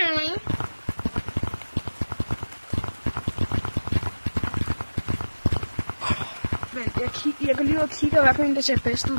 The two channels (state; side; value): inverted; both; correlation -1.00